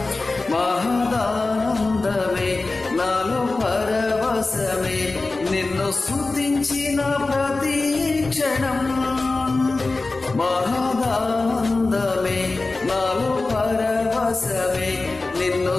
మహదానందమే నాలో పరవశమే నిన్ను స్తుతించిన ప్రతి క్షణం మహదానందమే నాలో పరవశమే నిన్ను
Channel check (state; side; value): quieter; right; 3.4 dB